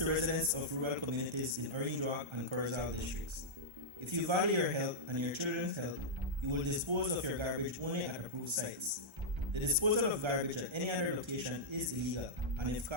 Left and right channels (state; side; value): late; left; 1.3 ms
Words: residents of rural communities in Orange Rock and Corozal districts. If you value your health and your children's health, you will dispose of your garbage only at approved sites. The disposal of garbage at any other location is illegal, and if